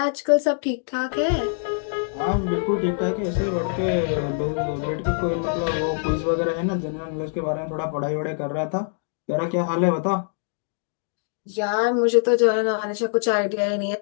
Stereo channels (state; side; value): silent; right; digital silence